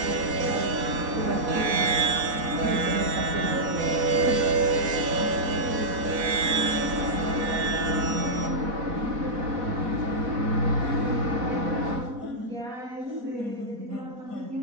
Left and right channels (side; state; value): left; late; 4.1 ms